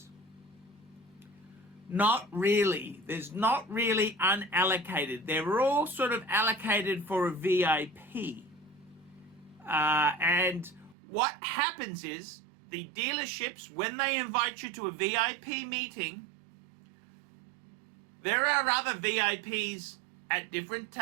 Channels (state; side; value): drops out; left; at 11.0 s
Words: not really. There's not really unallocated. They're all sort of allocated for a VIP. And what happens is the dealerships, when they invite you to a VIP meeting, there are other VIPs at different